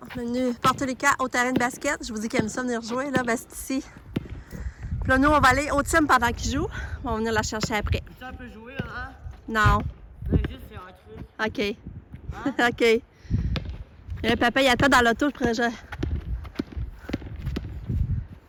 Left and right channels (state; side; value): identical; both; correlation 1.00